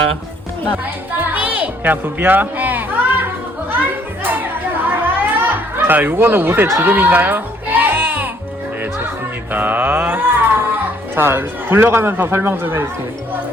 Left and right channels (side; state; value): both; normal; correlation 0.64